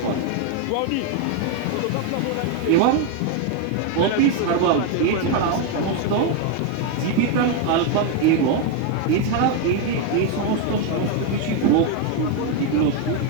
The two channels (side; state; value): both; different; correlation 0.01